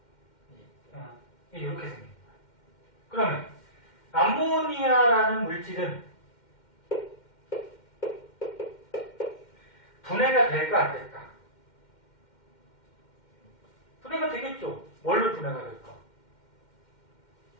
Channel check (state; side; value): late; right; 2.1 ms